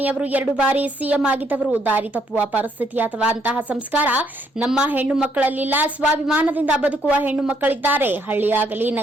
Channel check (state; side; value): normal; both; correlation 0.71